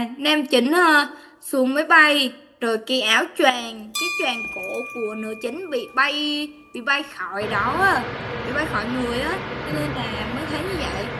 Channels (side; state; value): both; identical; correlation 1.00